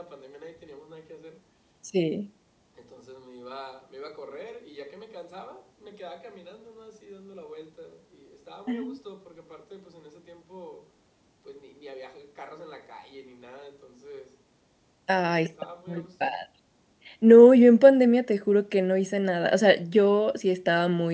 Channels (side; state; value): both; identical; correlation 1.00